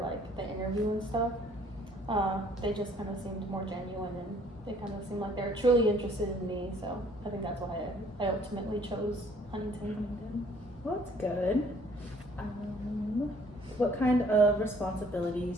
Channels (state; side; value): normal; both; correlation 0.59